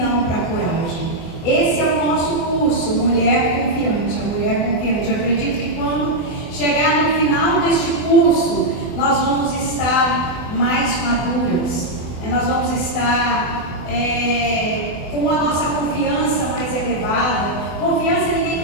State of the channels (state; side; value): late; right; 24 ms